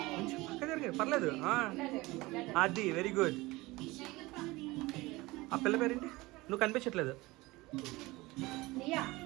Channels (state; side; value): quieter; left; 21.1 dB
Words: పక్క జరిగే పర్లేదు. అది వెరీ గుడ్. ఆ పిల్ల పేరేంటి? నువ్వు కనిపించట్లేదు.